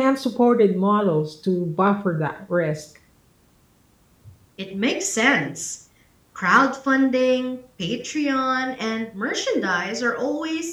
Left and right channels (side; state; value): both; identical; correlation 1.00